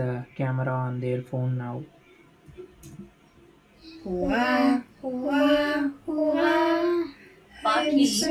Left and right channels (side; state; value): both; identical; correlation 1.00